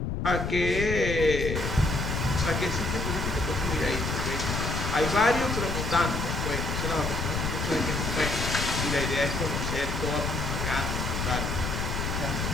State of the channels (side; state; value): left; noise; rumble, 2 dB below the sound